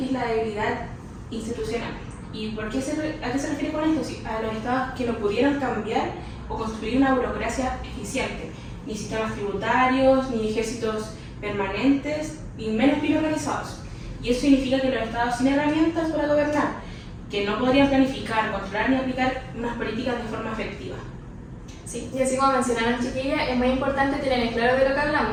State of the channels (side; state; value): both; identical; correlation 1.00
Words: es la debilidad institucional. ¿Y a qué se refiere con esto? Sí, a los estados que no pudieron cambiar o construir una burocracia eficiente, ni sistemas tributarios, ni ejércitos permanentes, ni menos bien organizados. Y eso significa que los estados sin herramientas para gobernar, que no podrían planificar, controlar ni aplicar unas políticas de forma efectiva. Sí, y así como mencionaron chiquillas, es muy importante tener en claro de lo que